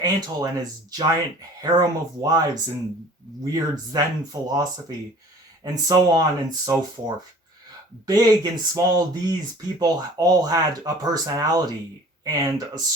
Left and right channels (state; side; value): normal; both; correlation 0.48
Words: Antle and his giant harem of wives and weird Zen philosophy, and so on and so forth. Big and small, these people all had a personality and a